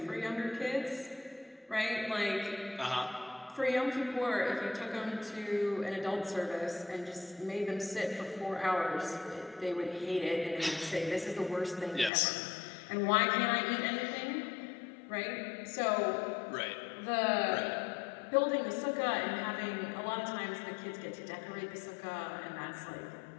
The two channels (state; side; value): drops out; right; at 12.1 s